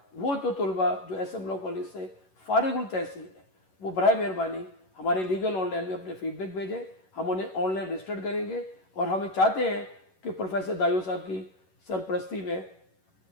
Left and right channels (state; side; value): late; right; 11 ms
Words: وہ جو طلباء جو ایس ایم لاء کالج سے فارغ التحصیل ہیں وہ برائے مہربانی ہمارے لیگل آن لائن میں اپنے فیڈ بیک بھیجیں. ہم انہیں آن لائن رجسٹرڈ کریں گے اور ہمیں چاہتے ہیں کہ پروفیسر دایو صاحب کی سرپرستی میں